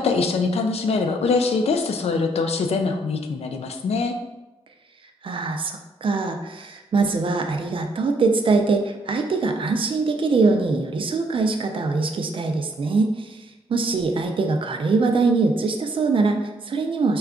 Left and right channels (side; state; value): both; normal; correlation 0.68